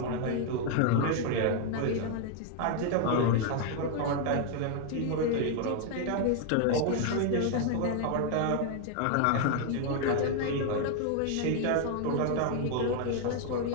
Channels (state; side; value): different; both; correlation 0.00